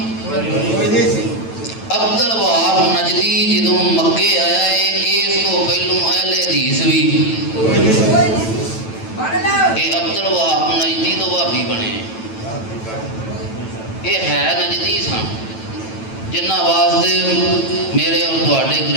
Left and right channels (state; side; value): late; right; 9.1 ms